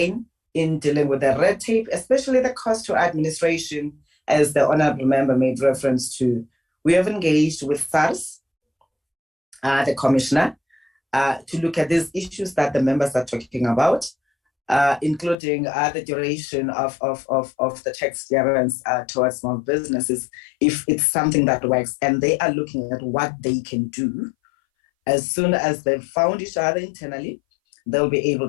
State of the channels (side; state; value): right; drops out; at 15.4 s